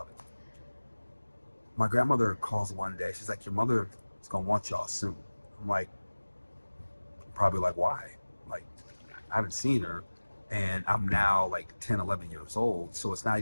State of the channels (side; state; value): both; inverted; correlation -1.00